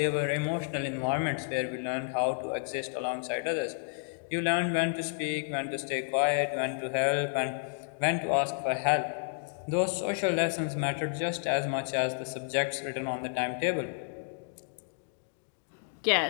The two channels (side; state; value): right; silent; digital silence